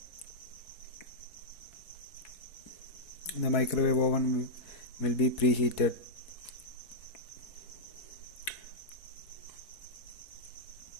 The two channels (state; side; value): late; right; 4.2 ms